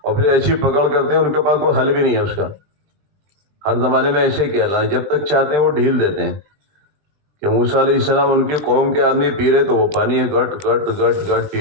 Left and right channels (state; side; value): late; left; 20 ms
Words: اور پھر ایسی پکڑ کرتے ہیں ان کے پاس کوئی حل بھی نہیں ہے اس کا۔ ہر زمانے میں ایسے ہی کیا اللہ، جب تک چاہتے ہیں وہ ڈھیل دیتے ہیں۔ کہ موسیٰ علیہ السلام ان کی قوم کے آدمی پی رہے تو وہ پانی گٹ گٹ گٹ گٹ پی